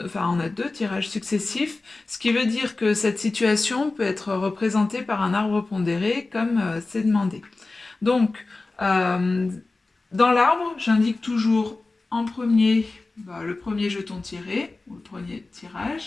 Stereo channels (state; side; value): quieter; right; 3.4 dB